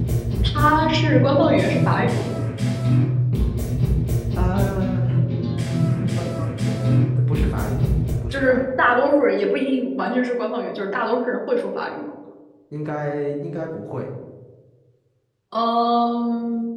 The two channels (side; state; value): both; identical; correlation 1.00